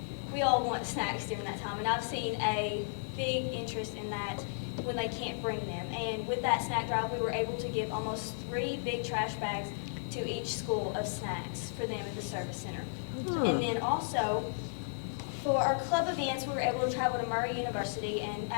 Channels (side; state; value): right; silent; 55 dB below the other